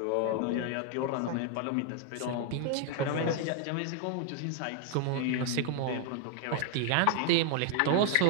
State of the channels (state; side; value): different; both; correlation 0.00